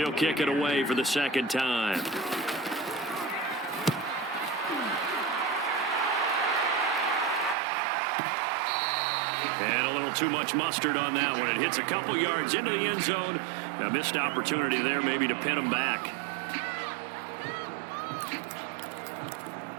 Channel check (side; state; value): left; drops out; at 7.6 s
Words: kick it away for the second time. And a little too much mustard on that one. It hits a couple yards into the end zone. A missed opportunity there maybe to pin him back.